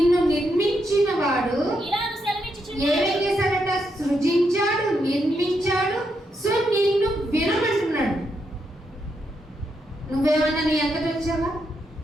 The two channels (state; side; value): normal; both; correlation 0.81